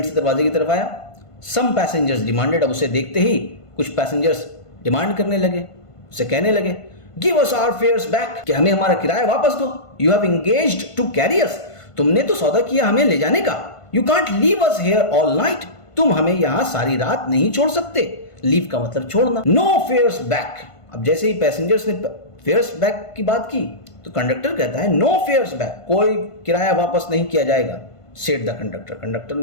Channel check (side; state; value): right; late; 1.5 ms